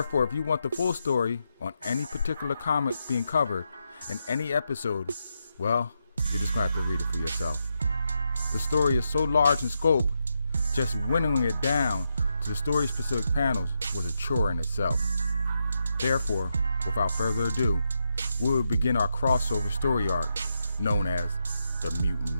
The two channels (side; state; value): both; inverted; correlation -0.84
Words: if you want the full story on any particular comic being covered in any episode, well, you're just going to have to read it for yourself. The story is so large in scope, just winnowing it down to the story-specific panels was a chore in itself. Therefore, without further ado, we will begin our crossover story arc known as the Mutant